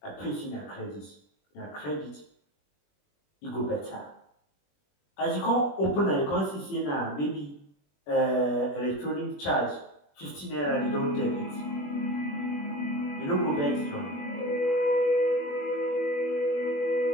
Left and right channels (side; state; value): right; late; 21 ms